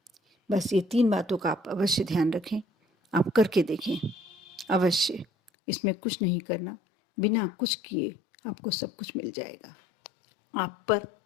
बस ये 3 बातों का आप अवश्य ध्यान रखें, आप करके देखें अवश्य। इसमें कुछ नहीं करना, बिना कुछ किए आपको सब कुछ मिल जाएगा। आप पर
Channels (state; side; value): drops out; right; at 5.5 s